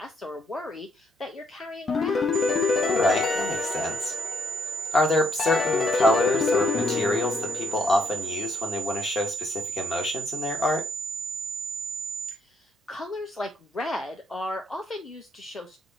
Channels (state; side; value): normal; both; correlation 0.73